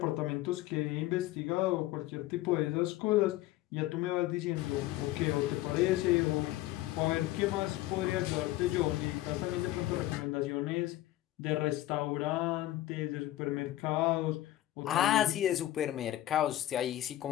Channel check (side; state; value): right; quieter; 15.2 dB